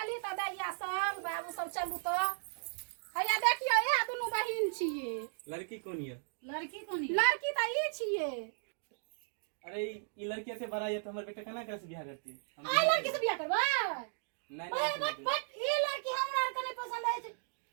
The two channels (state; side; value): silent; left; digital silence